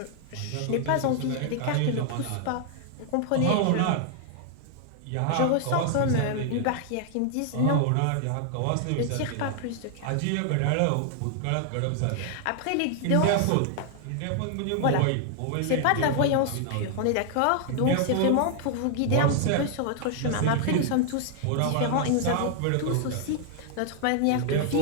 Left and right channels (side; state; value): both; different; correlation 0.00